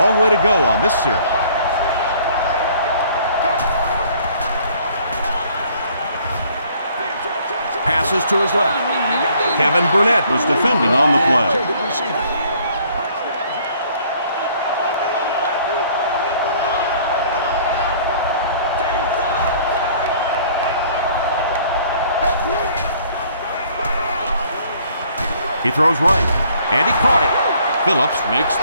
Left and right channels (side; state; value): both; inverted; correlation -0.59